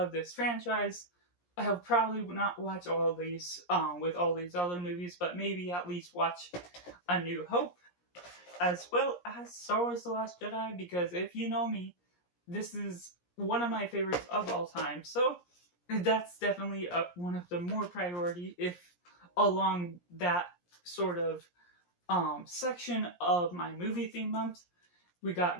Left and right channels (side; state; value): right; late; 17 ms